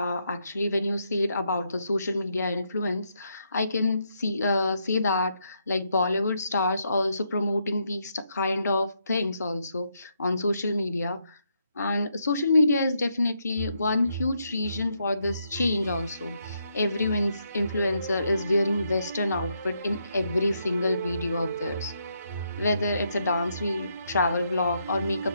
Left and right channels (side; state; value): both; inverted; correlation -0.78